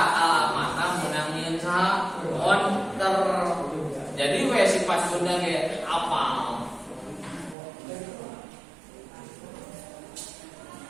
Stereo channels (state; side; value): drops out; left; at 7.6 s